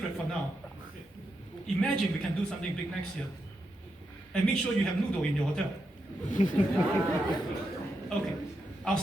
for now. Imagine we can do something big next year. And make sure you have noodle in your hotel. Okay, I'll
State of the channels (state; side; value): normal; both; correlation 0.85